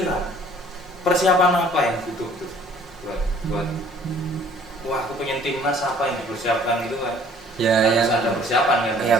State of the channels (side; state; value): both; normal; correlation 0.55